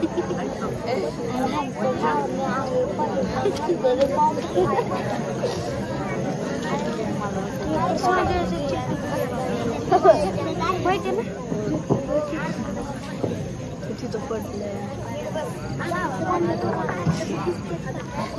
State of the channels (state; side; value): identical; both; correlation 1.00